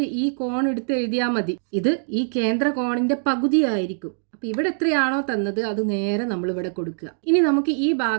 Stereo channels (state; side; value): silent; left; digital silence